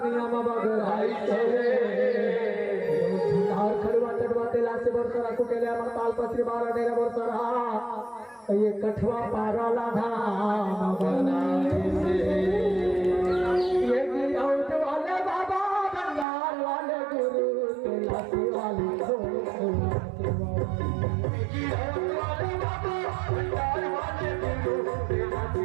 में बगराई से, खड़ुआ चढ़वा तेला से बरसरा कुटेले अमर ताल पत्री 12 डेरा बरसरा, ये कठवा पारा लाधा बनाए से, ये गिरौत वाले बाबा बंगाल वाले गुरु तेला से वाली गिरौत वाले बाबा बंगाल वाले गुरु तेला से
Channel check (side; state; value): left; drops out; at 16.2 s